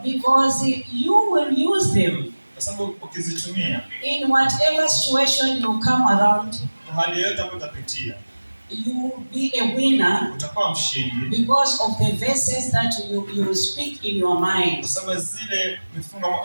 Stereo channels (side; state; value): both; inverted; correlation -1.00